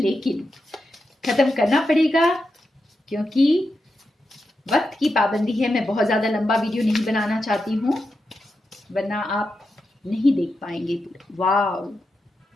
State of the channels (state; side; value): normal; both; correlation 0.88